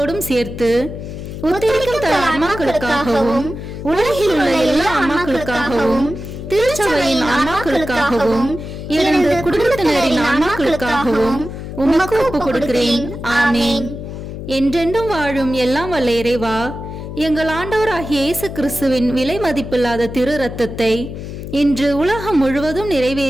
சேர்த்து ஒத்துழைக்கும் தர ஆன்மாக்களுக்காகவும் உலகில் உள்ள எல்லா ஆன்மாக்களுக்காகவும் திருச்சபையின் ஆன்மாக்களுக்காகவும் எனது குடும்பத்தினரின் ஆன்மாக்களுக்காகவும் உமக்கு ஒப்புக் கொடுக்கிறேன். ஆமீன். என்றென்றும் வாழும் எல்லாம் வல்ல இறைவா, எங்கள் ஆண்டவராகிய இயேசு கிறிஸ்துவின் விலை மதிப்பில்லாத திரு இரத்தத்தை இன்று உலகம் முழுவதும்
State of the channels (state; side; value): noise; left; hum, 9 dB below the sound